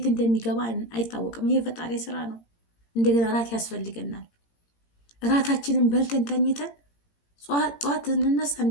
እንደሚገባ አይታወቅም። ይሄ ፈጣሪ ስራ ነው። እንደገና ራት ያስፈልገናል። ራታችንን በልተን ተኝተን ጧት እንነሳ፣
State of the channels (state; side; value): late; right; 17 ms